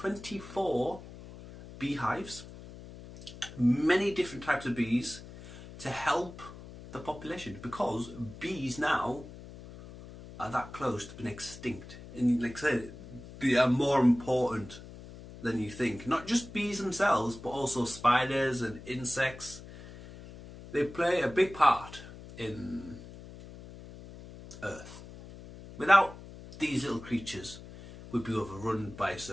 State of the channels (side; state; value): left; noise; hum, 16 dB below the sound